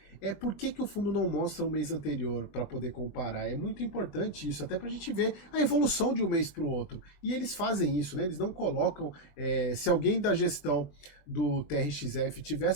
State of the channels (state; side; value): late; right; 21 ms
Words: é por que o fundo não mostra o mês anterior para poder comparar. É muito importante isso, até para a gente ver a evolução de um mês para o outro. E eles fazem isso, né? Eles não colocam. Se alguém da gestão do TRXF estiver